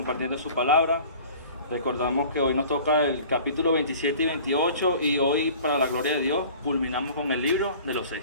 su palabra. Recordamos que hoy nos toca el capítulo 27 y 28 y hoy, para la gloria de Dios, culminamos con el libro de los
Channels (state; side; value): inverted; both; correlation -0.45